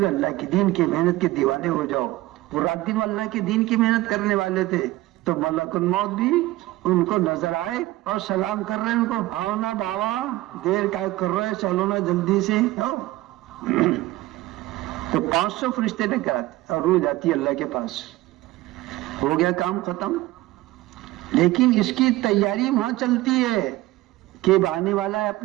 اللہ کے دین کی محنت کے دیوانے ہو جاؤ. وہ رات دن اللہ کے دین کی محنت کرنے والے تھے, تو ملک الموت بھی ان کو نظر آئے اور سلام کر رہے ہیں ان کو, آؤ نا بابا, دیر کا کر رہے, چلو نا جلدی سے. تو 500 فرشتے لے کر آتے اور روح جاتی ہے اللہ کے پاس. ہو گیا کام ختم. لیکن اس کی تیاری وہاں چلتی ہے کہ آنے والا ہے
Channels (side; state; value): left; quieter; 17.8 dB